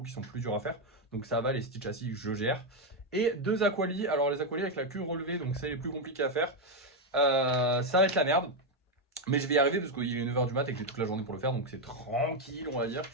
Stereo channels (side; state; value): both; normal; correlation 0.04